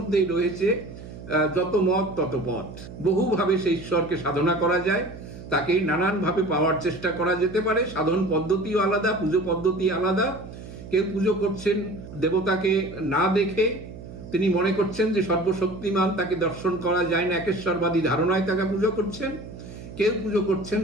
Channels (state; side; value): noise; right; hum, 14 dB below the sound